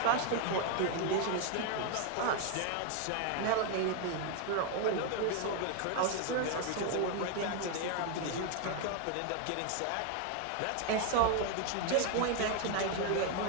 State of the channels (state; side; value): different; both; correlation 0.01